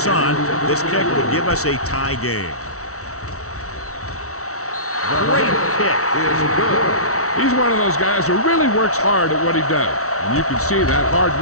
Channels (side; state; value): right; late; 0.64 ms